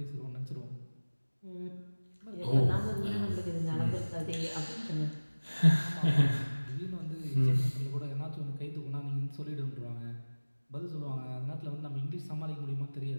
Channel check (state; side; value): inverted; both; correlation -1.00